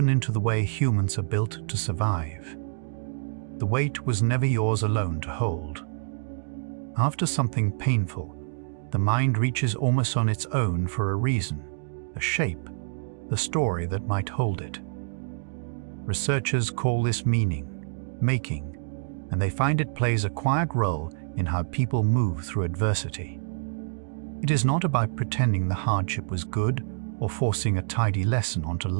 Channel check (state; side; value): silent; left; digital silence